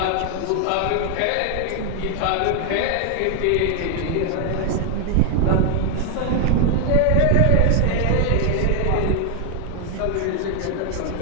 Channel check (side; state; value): both; different; correlation 0.00